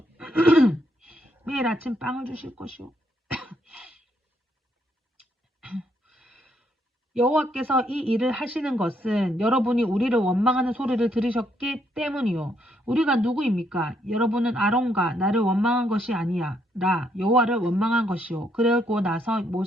매일 아침 빵을 주실 것이요. 여호와께서 이 일을 하시는 것은 여러분이 우리를 원망하는 소리를 들으셨기 때문이요. 우리가 누구입니까? 여러분은 아론과 나를 원망한 것이 아니야. 나 여호와를 원망한 것이요. 그러고 나서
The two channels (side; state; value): both; normal; correlation 0.73